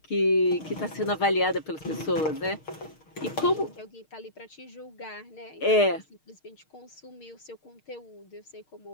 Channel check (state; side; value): late; right; 6.5 ms